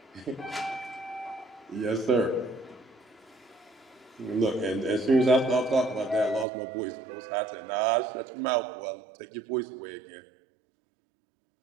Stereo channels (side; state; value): left; drops out; at 6.5 s